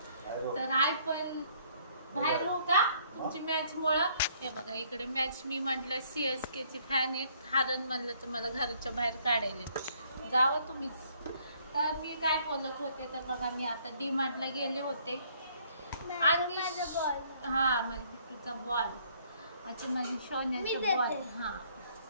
तर आई पण बाहेर हो का तुमची मॅच मुळे। हे बघा इकडे मॅच, मी म्हटलं CSK ची फॅन आहे, हारण म्हणलं तर मला घराच्या बाहेर काढायला जावं तुम्हीच। तर मी काय बोलत होते तर बघा, मी आता DMart ला गेले होते आणि हा माझ्या बिट्टूचा बॉल, अच्छा माझी सोन्याचा बॉल। हा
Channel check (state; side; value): inverted; both; correlation -0.64